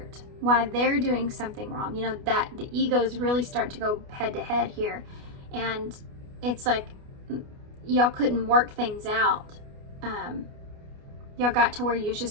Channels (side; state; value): left; late; 29 ms